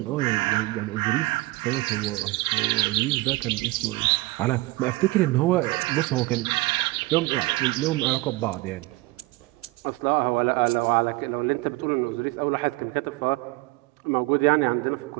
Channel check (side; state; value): left; quieter; 21.4 dB